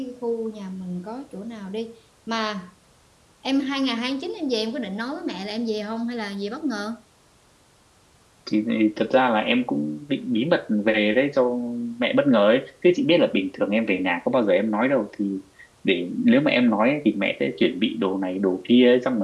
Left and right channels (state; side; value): identical; both; correlation 1.00